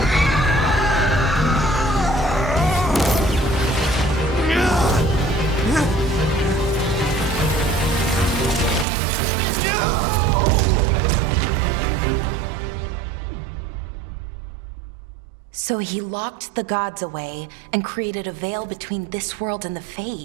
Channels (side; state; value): left; drops out; at 8.8 s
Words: So he locked the gods away and created a veil between this world and the